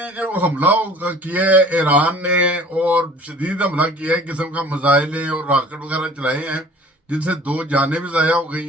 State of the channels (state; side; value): normal; both; correlation 0.48